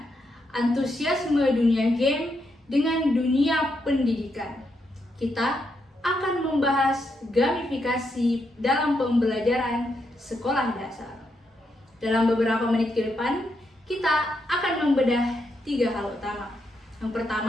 antusiasme dunia game dengan dunia pendidikan. Kita akan membahas gamifikasi dalam pembelajaran sekolah dasar. Dalam beberapa menit ke depan, kita akan membedah 3 hal utama. Yang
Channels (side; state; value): both; normal; correlation 0.81